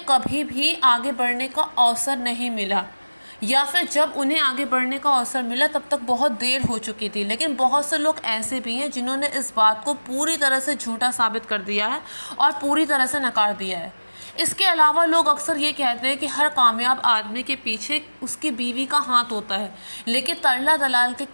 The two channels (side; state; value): both; inverted; correlation -1.00